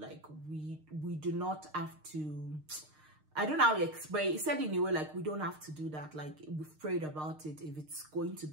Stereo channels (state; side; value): late; left; 6.5 ms